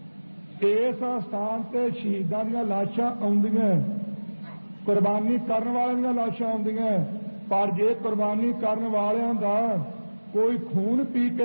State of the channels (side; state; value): both; inverted; correlation -1.00